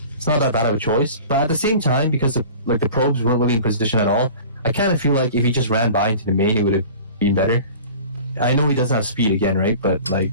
it's not that bad of a choice. But at the same time, because the probes weren't really in position at all, I kind of feel like if he just ran by into the main, it would have been better. I know he doesn't have speed again, right? But like,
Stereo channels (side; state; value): both; inverted; correlation -0.42